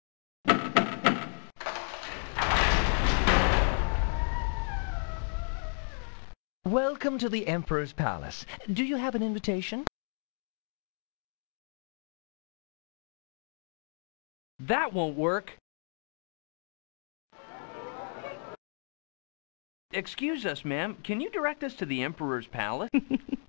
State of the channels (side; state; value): right; silent; 56 dB below the other